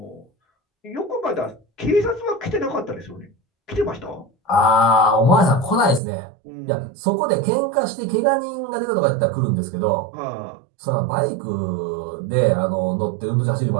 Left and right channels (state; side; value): drops out; left; at 6.0 s